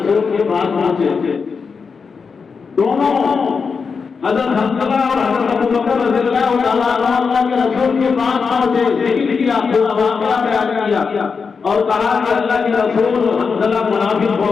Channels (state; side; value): quieter; right; 5.4 dB